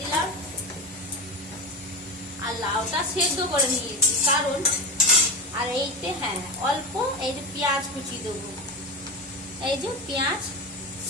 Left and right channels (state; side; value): normal; both; correlation 0.21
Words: দিলাম। আর লাউটা সেদ্ধ করে নিয়েছি, কারণ আর এইতে অল্প এই যে পেঁয়াজ কুচি দেবো। এই যে পেঁয়াজ